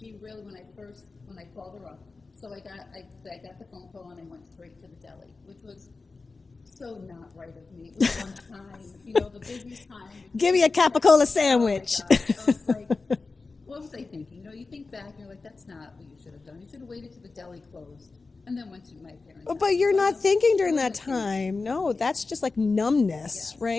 really, when I called her up, so I got the phone call and I went straight to the deli, which was so not right of me. It was one time, the busiest time. Give me a capicola sandwich. Oh my gosh. I was like, what was I thinking? You think back and you're like, that's not what you should have done. You should have waited till the deli closed and then went to my parents' house. But you're not thinking during that time. No, that's just like numbness,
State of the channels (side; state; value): right; quieter; 3.9 dB